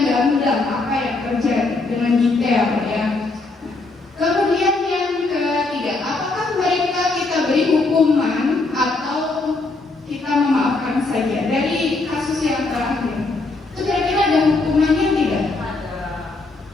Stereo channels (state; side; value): quieter; right; 3.4 dB